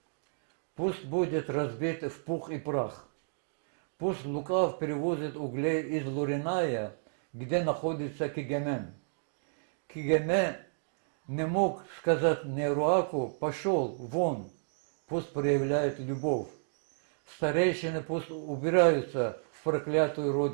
пусть будет разбит в пух и прах. Пусть Лукав перевозит углей из Луриная, где находится Кигемен. Кигеме не мог сказать Неруаку: пошел вон, пусть проявляет любовь. Старейшины пусть убираются в проклятую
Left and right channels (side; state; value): left; silent; digital silence